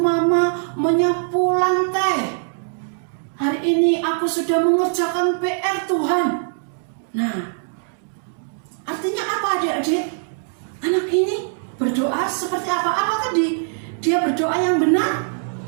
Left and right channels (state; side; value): silent; left; digital silence